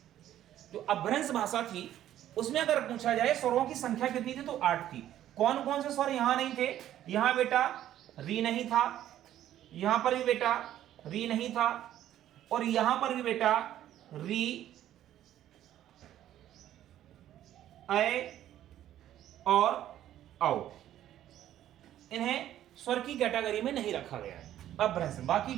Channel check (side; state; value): left; quieter; 12.1 dB